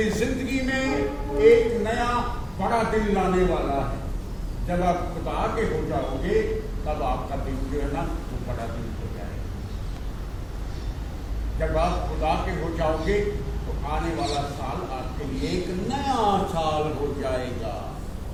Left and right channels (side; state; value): both; identical; correlation 1.00